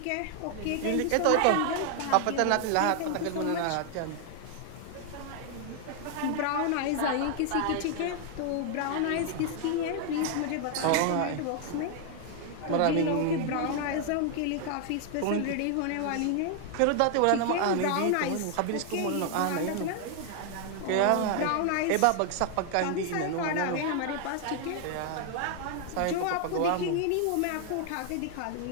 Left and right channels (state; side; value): different; both; correlation 0.00